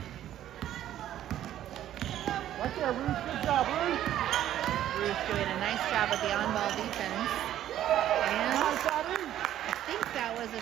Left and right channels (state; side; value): quieter; left; 12.0 dB